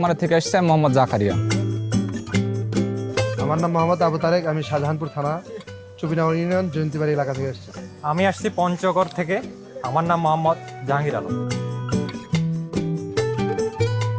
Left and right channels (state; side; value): identical; both; correlation 1.00